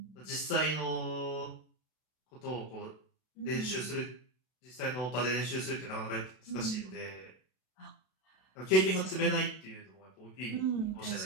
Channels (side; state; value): right; late; 32 ms